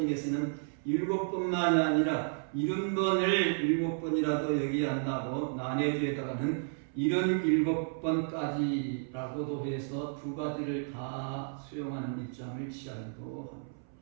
7번만이 아니라 70번을 7번이라도 여기한다고 난해주에다가는 77번까지라고도 해서 두 가지를 다 수용하는 입장을 취하기도 합니다.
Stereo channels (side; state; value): left; silent; 56 dB below the other